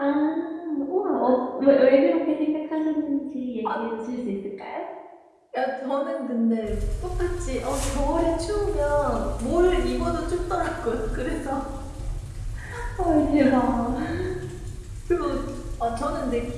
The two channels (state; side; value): identical; both; correlation 1.00